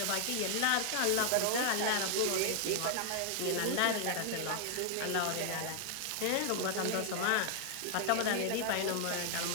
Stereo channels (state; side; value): different; both; correlation 0.00